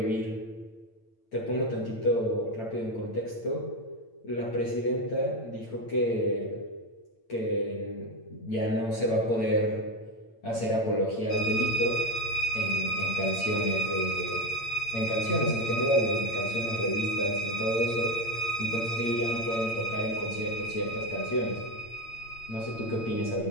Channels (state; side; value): late; right; 8.8 ms